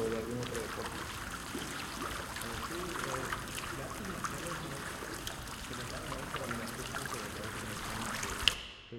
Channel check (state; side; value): identical; both; correlation 1.00